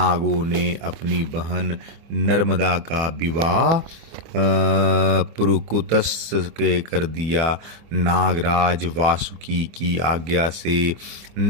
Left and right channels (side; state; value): left; late; 24 ms